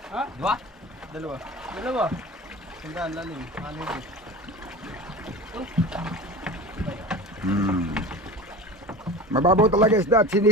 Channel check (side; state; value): both; normal; correlation 0.34